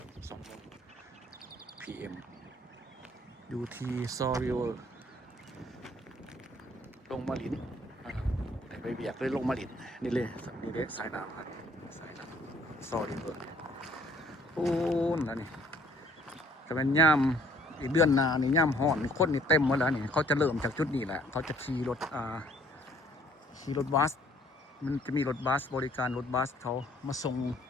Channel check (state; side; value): normal; both; correlation 0.60